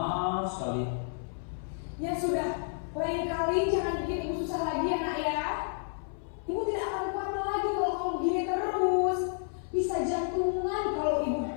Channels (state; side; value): silent; right; 57 dB below the other